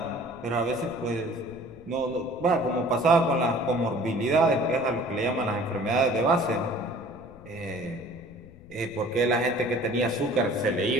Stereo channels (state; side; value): noise; left; rumble, 22 dB below the sound